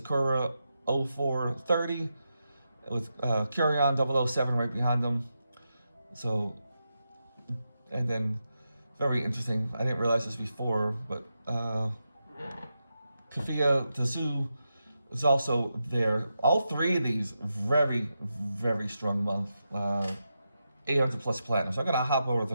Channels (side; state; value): both; inverted; correlation -0.87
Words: 0430, with Kurion 007 right behind them. So, and then, very interesting, I didn't realize this before, but Kafia Tazu is also there. All 3 of these very, very strong month. 800 plus platinum. So I'm gonna hop over to